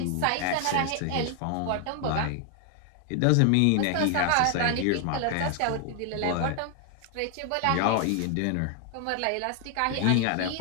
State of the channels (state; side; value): different; both; correlation 0.00